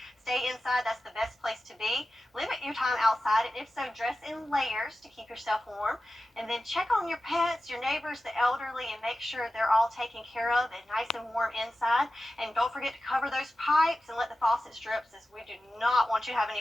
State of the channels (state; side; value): normal; both; correlation 0.94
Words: stay inside. That's the best place to be. Limit your time outside, and if so, dress in layers to keep yourself warm. And then check on your pets, your neighbors, the elderly, and make sure they're all taken care of and nice and warm inside. And don't forget to cover those pipes and let the faucets drip, since we do not want you to have